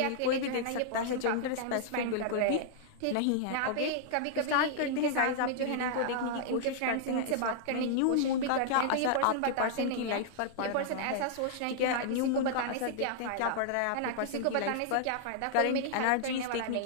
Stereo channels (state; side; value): different; both; correlation -0.01